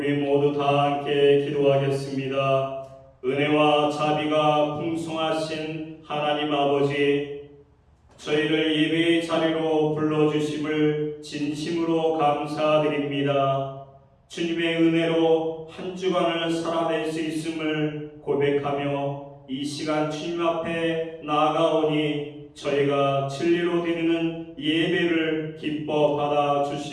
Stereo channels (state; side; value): identical; both; correlation 1.00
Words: 모두 다 함께 기도하겠습니다. 은혜와 자비가 풍성하신 하나님 아버지, 저희를 예배의 자리로 불러주심을 진심으로 감사드립니다. 주님의 은혜로 한 주간을 살아낼 수 있음을 고백하며 이 시간 주님 앞에 나아가오니 저희가 진리로 드리는 예배를 기뻐 받아